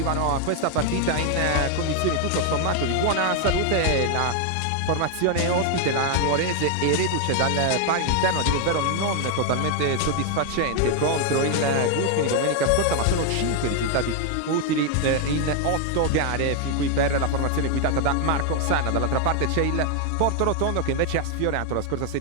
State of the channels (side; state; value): both; different; correlation 0.00